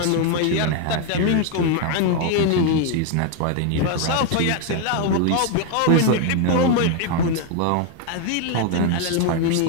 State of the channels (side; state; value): both; different; correlation 0.01